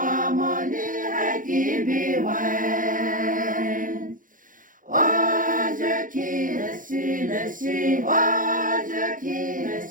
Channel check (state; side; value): late; left; 0.39 ms